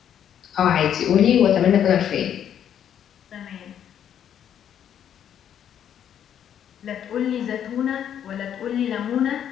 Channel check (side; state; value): right; quieter; 9.5 dB